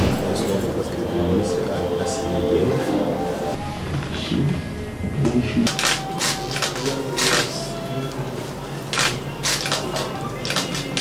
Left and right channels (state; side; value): identical; both; correlation 1.00